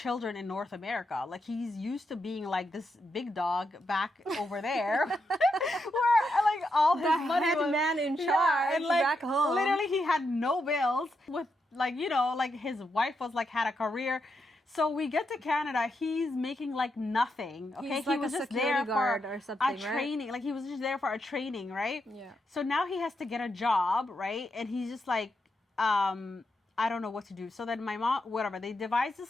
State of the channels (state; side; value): normal; both; correlation 0.83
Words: in North America. Like he's used to being like this big dog back over there where like all his The money head was, man in Yeah, charge and, like, back home. Literally he had no bills with like, you know, like his wife was like had a career. So we get to Canada, he's making like nothing. Okay, He's he like was a just security there guard for or something, a right? training. Like he was just there for a training, right? Yeah. So now he has to get a job, right? And he's just like, I don't know what to do. So then my mom, whatever, they devised